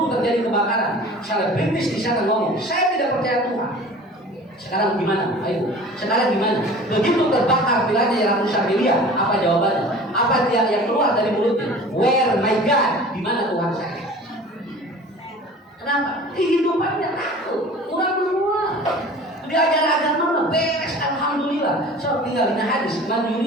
terjadi kebakaran, selebritis di sana ngomong, saya tidak percaya Tuhan. Sekarang gimana? Ayo. Sekarang gimana? Begitu terbakar vilanya yang rusak miliar, apa jawabannya? Apa yang keluar dari mulutnya? Where my God? Di mana Tuhan saya? Kenapa? Kehidupannya takut. Kurang semua. Diajar agama beres, alhamdulillah. So tinggal di hadis, man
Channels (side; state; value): both; normal; correlation 0.42